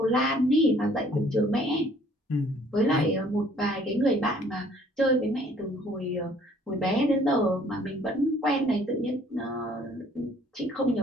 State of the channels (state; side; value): normal; both; correlation 0.58